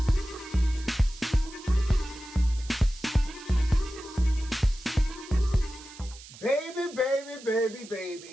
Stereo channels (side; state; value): right; noise; hiss, 18 dB below the sound